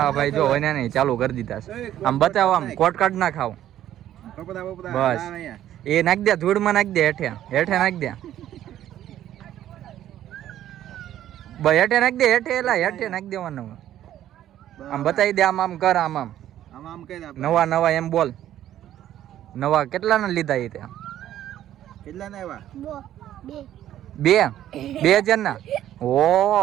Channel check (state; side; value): quieter; left; 12.1 dB